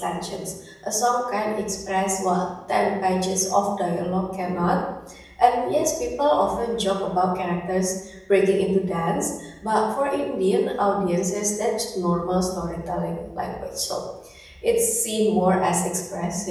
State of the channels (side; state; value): both; identical; correlation 1.00